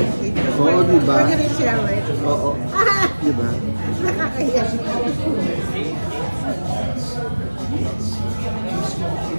Oo, di ba? Pwede rin share, right? Oo. Di ba? Nakakaya.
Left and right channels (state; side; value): inverted; both; correlation -1.00